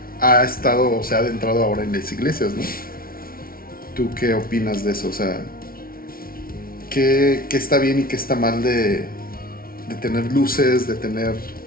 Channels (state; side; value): late; right; 0.43 ms